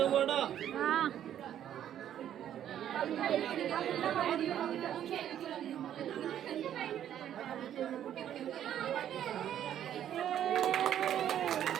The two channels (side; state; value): left; quieter; 10.6 dB